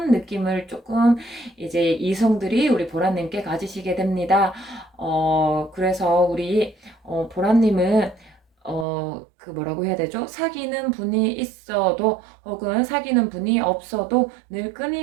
느낌을 조금 이제 이성들이 우리 보라님께 가지시게 됩니다. 그래서 우리 보라님은 그 뭐라고 해야 되죠? 사귀는 분이 있어도 혹은 사귀는 분이 없어도 늘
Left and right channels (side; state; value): left; drops out; at 8.8 s